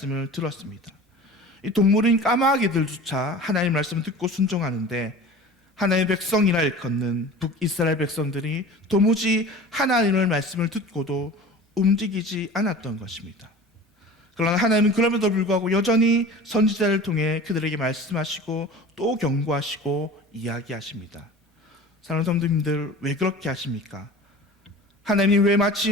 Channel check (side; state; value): both; normal; correlation 0.39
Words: 들었습니다. 이 동물인 까마귀들조차 하나님의 말씀을 듣고 순종하는데 하나님의 백성이라 일컫는 북이스라엘 백성들이 도무지 하나님의 말씀을 듣고도 움직이지 않았던 것입니다. 그러나 하나님은 그럼에도 불구하고 여전히 선지자를 통해 그들에게 말씀하시고 또 경고하시고 이야기하십니다. 사랑하는 성도님들, 왜 그렇게 하십니까? 하나님이 왜